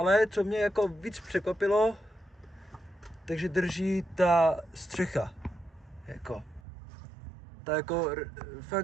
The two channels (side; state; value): left; drops out; at 6.6 s